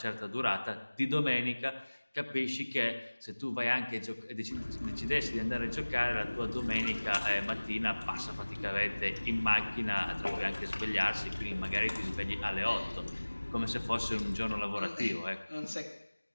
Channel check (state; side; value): inverted; both; correlation -1.00